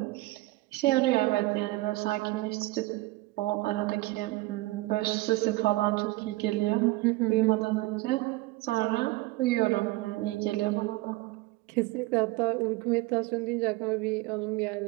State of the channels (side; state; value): left; quieter; 20.3 dB